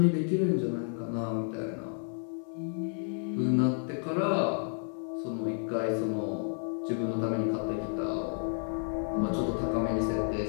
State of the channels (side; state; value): right; silent; 56 dB below the other